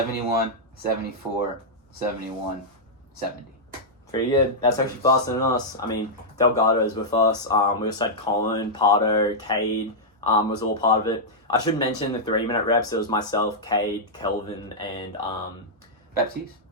74, 71, 70. Pretty good. That's actually faster than us. I mean, Delgardo is with us. We also had Colin, Pardo, Cade was all part of it. I should mention the 3-minute reps. It was myself, Cade, Kelvin, and Baptiste,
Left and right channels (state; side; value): normal; both; correlation -0.08